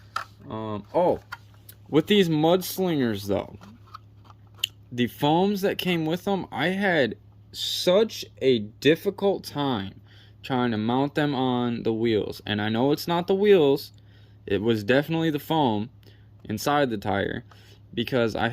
Oh, with these mudslingers though, the foams that came with them, I had such a difficult time trying to mount them on the wheels. And I know it's not the wheels, it was definitely the foam inside the tire, because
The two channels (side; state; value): both; identical; correlation 1.00